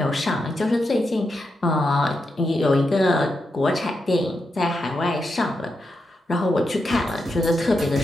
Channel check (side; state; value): both; normal; correlation 0.86